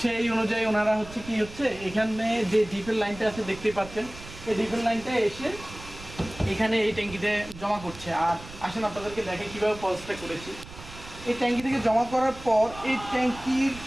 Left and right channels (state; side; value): noise; right; rumble, 16 dB below the sound